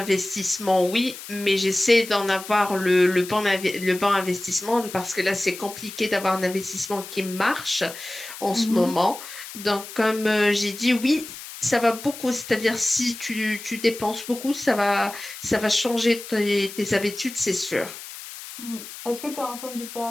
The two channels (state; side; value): noise; left; hiss, 13 dB below the sound